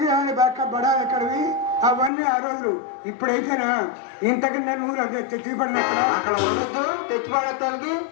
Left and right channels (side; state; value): right; drops out; at 2.1 s